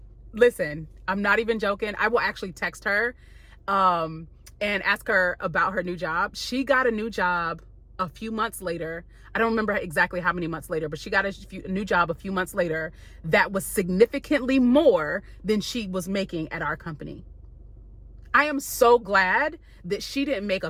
not even joking. I will actually text her and ask her about her new job. She got a new job a few months later. I don't remember exactly how many months later, but she got a new job a few months later that was significantly more than she was making at our company. I am so glad that she didn't make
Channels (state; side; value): identical; both; correlation 1.00